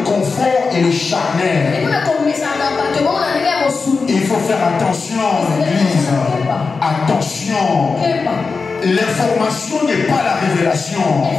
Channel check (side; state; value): right; quieter; 4.6 dB